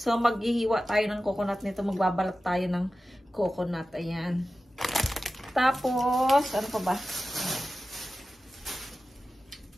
maghihiwa tayo ng coconut nito. Magbabalat tayo ng coconut, ayan. Tapos, ano pa ba?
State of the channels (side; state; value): both; normal; correlation 0.94